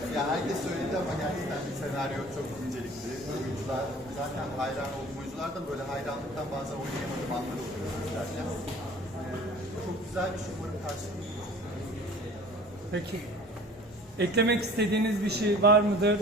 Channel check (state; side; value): normal; both; correlation 0.46